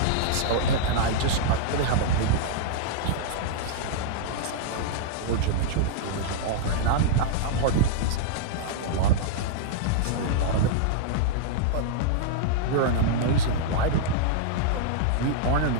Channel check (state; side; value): different; both; correlation -0.01